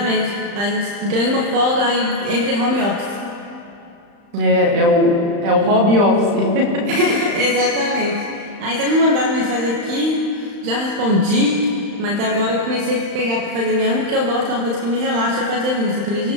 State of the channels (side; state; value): left; late; 35 ms